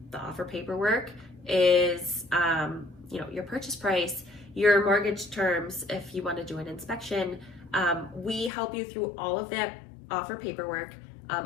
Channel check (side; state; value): right; drops out; at 8.5 s